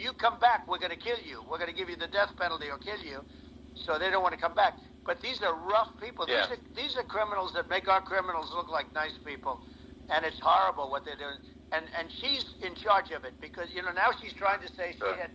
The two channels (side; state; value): both; identical; correlation 1.00